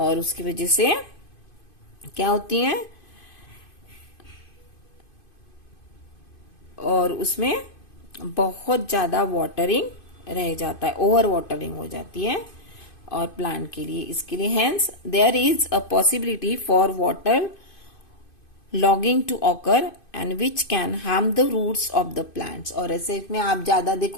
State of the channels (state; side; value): late; right; 2.5 ms